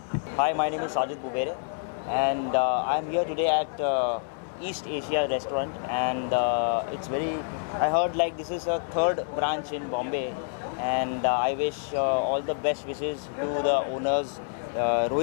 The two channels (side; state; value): right; silent; 60 dB below the other